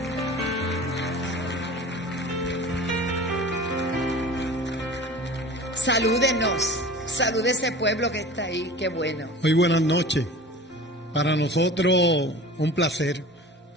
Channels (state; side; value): normal; both; correlation 0.39